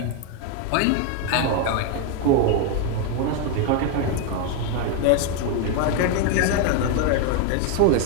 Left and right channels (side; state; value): both; different; correlation 0.01